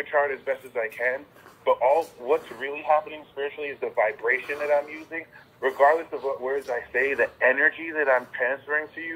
chart as best as I can, but what's really happening spiritually is the vibration that I'm using. Regardless of what words I say, the energy that I'm transferring to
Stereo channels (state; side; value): identical; both; correlation 1.00